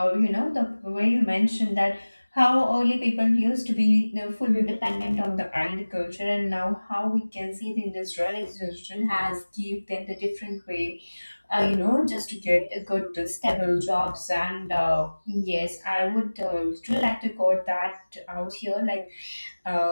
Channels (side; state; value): both; inverted; correlation -1.00